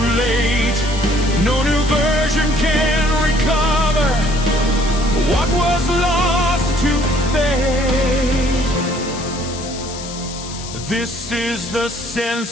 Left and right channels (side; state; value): left; noise; hiss, 12 dB below the sound